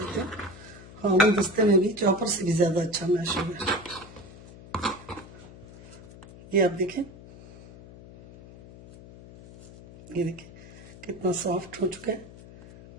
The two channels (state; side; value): noise; left; hum, 18 dB below the sound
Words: हूँ, हाँ वो दस्ते में भी चॉपर से भी ज्यादा अच्छा मैश हो गया। ये आप देखें, ये देखें कितना सॉफ्ट हो चुका है।